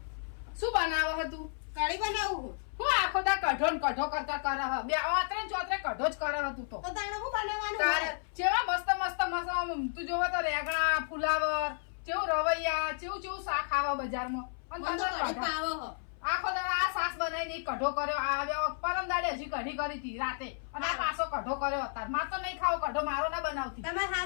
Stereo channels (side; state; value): right; silent; 56 dB below the other